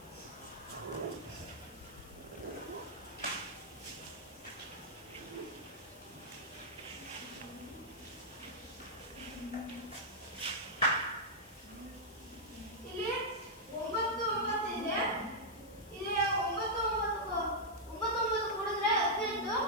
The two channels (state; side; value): noise; left; hiss, 21 dB below the sound